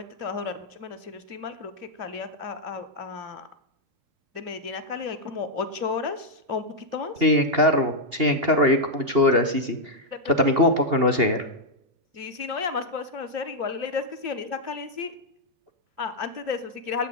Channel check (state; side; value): late; left; 2.8 ms